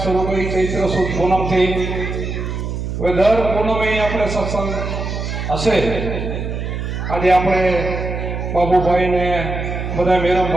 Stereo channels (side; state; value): right; noise; hum, 4 dB below the sound